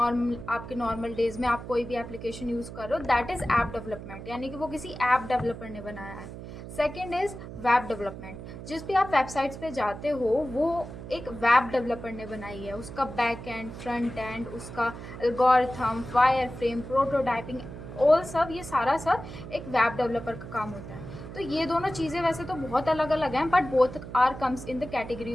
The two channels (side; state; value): right; noise; hum, 11 dB below the sound